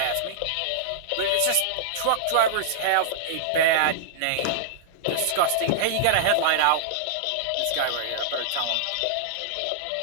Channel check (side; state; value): both; different; correlation -0.02